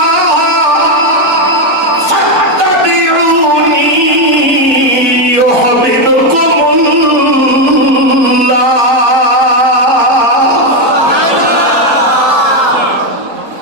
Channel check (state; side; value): normal; both; correlation 0.06